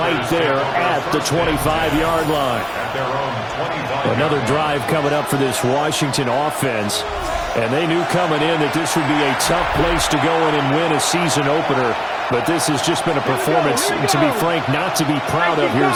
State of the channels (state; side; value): identical; both; correlation 1.00